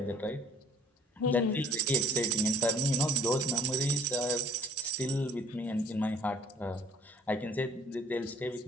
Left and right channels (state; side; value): normal; both; correlation 0.50